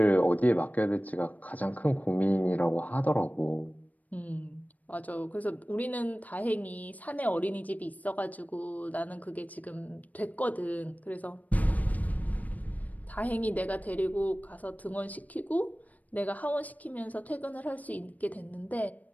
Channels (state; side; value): late; right; 0.075 ms